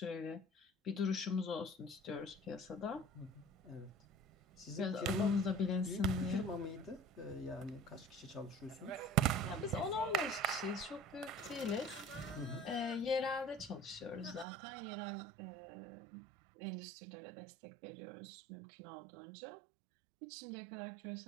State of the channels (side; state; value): left; drops out; at 14.5 s